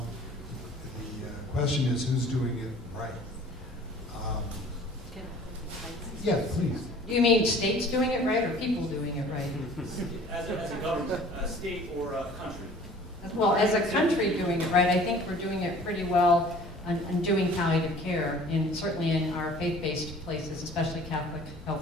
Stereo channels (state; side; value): normal; both; correlation 0.49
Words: The question is, who's doing it right? Yeah, please. Do you mean states doing it right or people doing it right? As a government, a state or a country? Well, as a country doing it right, I think we're doing it pretty well on doing palliative care, certainly in our faith-based places, especially Catholic